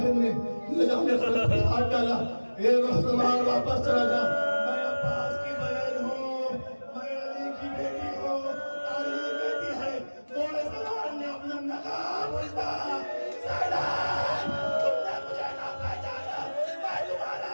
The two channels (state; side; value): inverted; both; correlation -1.00